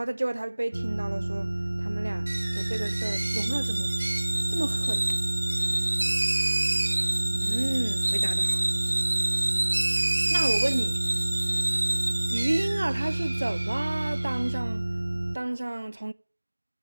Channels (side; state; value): both; inverted; correlation -1.00